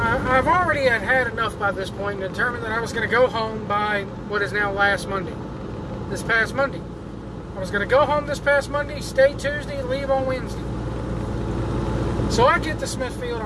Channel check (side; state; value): both; identical; correlation 1.00